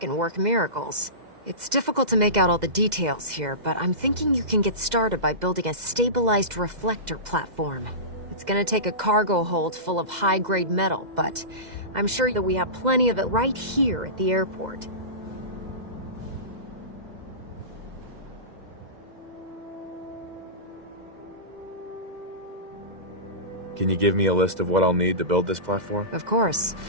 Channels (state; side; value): late; left; 2.0 ms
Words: work miracles. It's difficult to make out all the details here, but I'm thinking you can get started by building a stabilized reflector platform. It's gonna take a cargo hold full of high-grade metal, but I'm sure that we have plenty of it right here at the airport. Can you give me a list of what I'll need to build this platform? Of course.